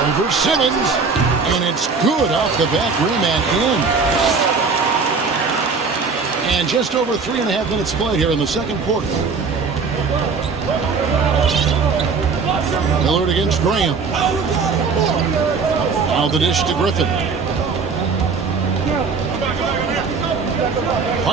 Over Simmons. And it's good off the back rim and in. And just over 3.5 minutes played here in the second quarter. Lillard against Graham. Now the dish to Griffin.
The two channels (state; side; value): quieter; left; 4.9 dB